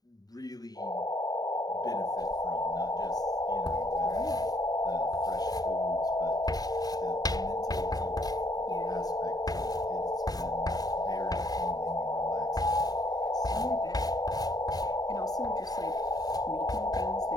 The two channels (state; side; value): late; right; 0.18 ms